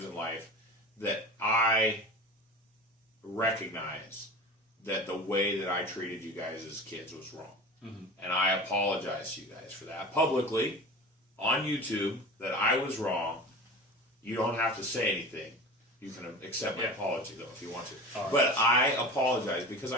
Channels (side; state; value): both; normal; correlation 0.33